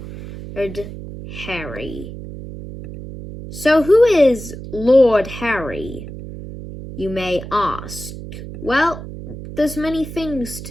Harry. So who is Lord Harry, you may ask? Well, there's many things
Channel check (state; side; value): noise; right; hum, 11 dB below the sound